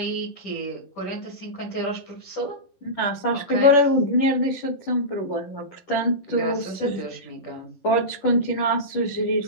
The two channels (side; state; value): right; late; 10 ms